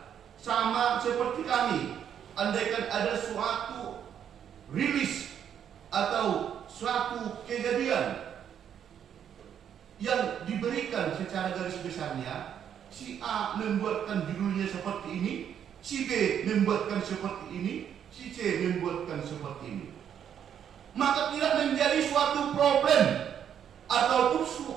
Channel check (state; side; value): quieter; left; 8.9 dB